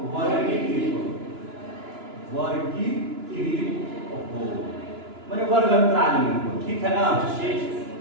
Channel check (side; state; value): left; late; 2.9 ms